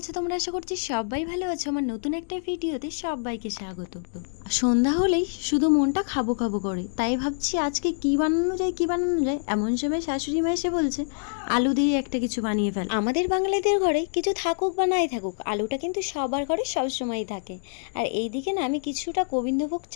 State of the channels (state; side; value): silent; right; digital silence